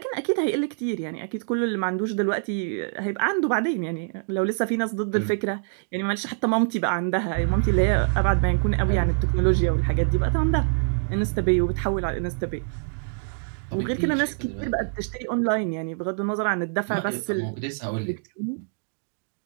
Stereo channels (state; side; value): silent; left; digital silence